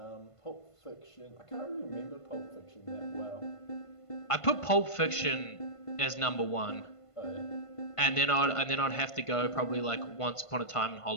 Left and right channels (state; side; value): late; right; 1.5 ms